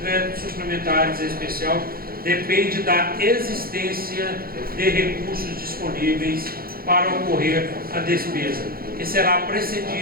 suplementares especial depende da existência de recursos disponíveis para ocorrer a despesa e será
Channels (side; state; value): left; late; 0.43 ms